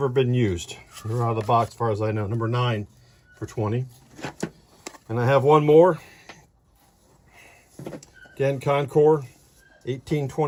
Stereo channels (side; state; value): both; identical; correlation 1.00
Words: been used. They're out of the box as far as I know. Number 9 for $20. And I have one more. Again, Concord